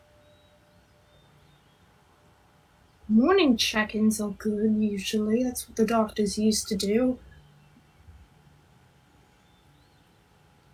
Morning check-ins are good, usually. That's what the doctors used to do.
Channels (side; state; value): both; identical; correlation 1.00